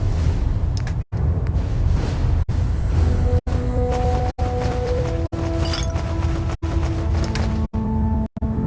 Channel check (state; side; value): identical; both; correlation 1.00